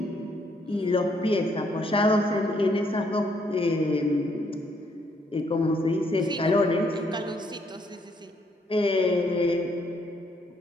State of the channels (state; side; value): normal; both; correlation 0.71